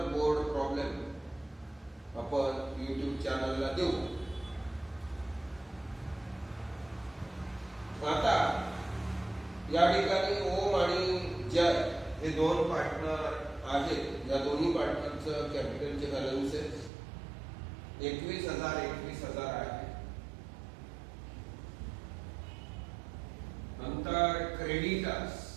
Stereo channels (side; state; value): left; drops out; at 16.9 s